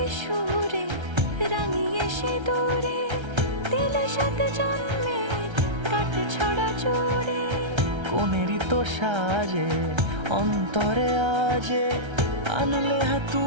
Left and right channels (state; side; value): late; left; 1.3 ms